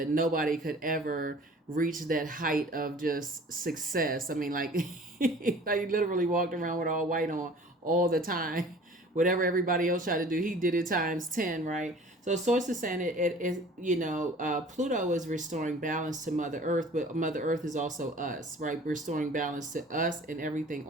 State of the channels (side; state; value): both; normal; correlation 0.47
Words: nobody could ever reach that height of just success. I mean, like, like he literally walked around with all white on all the time. Whatever everybody else tried to do, he did it times 10, right? So source is saying Pluto is restoring balance to Mother Earth, but Mother Earth is also us, right? Restoring balance to us and everything